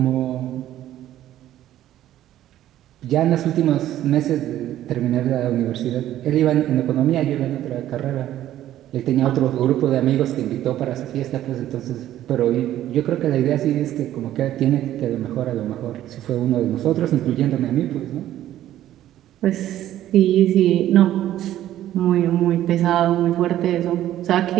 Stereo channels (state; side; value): quieter; left; 12.8 dB